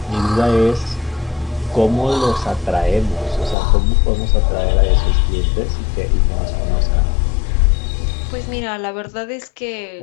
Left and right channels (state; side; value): drops out; right; at 3.6 s